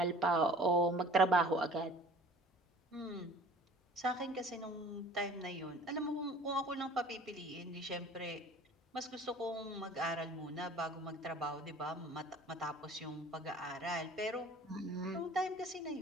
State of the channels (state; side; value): normal; both; correlation 0.47